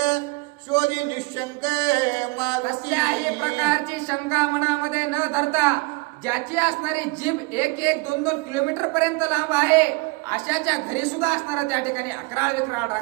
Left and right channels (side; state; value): left; quieter; 26.6 dB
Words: शोधी निशंक कसल्याही प्रकारची शंका मनामध्ये न धरता ज्याची असणारी जीभ 1-2 किलोमीटर पर्यंत लांब आहे अशाच्या घरी सुद्धा असणारा त्या ठिकाणी अकराळ विक्राळ